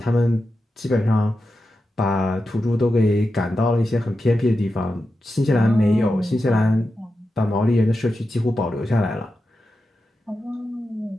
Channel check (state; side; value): normal; both; correlation 0.90